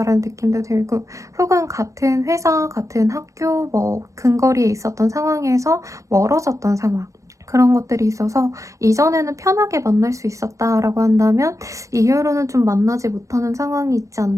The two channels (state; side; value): late; left; 0.15 ms